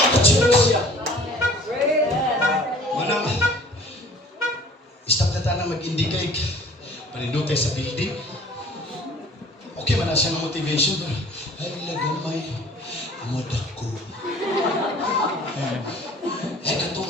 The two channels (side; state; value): both; normal; correlation 0.49